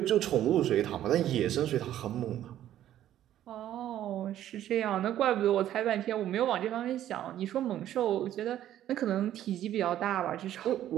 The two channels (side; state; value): left; quieter; 12.0 dB